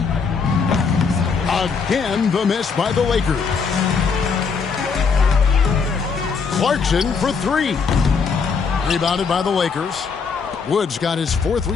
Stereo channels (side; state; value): right; quieter; 5.4 dB